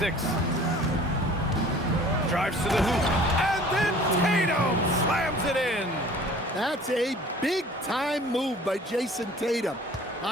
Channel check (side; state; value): both; normal; correlation 0.49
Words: Drives to the hoop. And then Tatum slams it in. That's a big-time move by Jason Tatum.